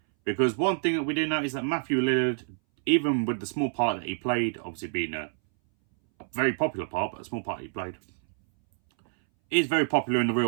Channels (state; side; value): silent; left; 60 dB below the other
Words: Because one thing that we do know is that Matthew Lillard, even with the small part that he played, obviously being a very popular part, but a small part he played, is very popular in the